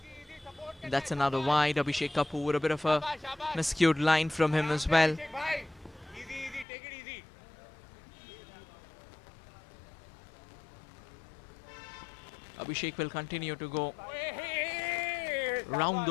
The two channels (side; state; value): right; drops out; at 6.7 s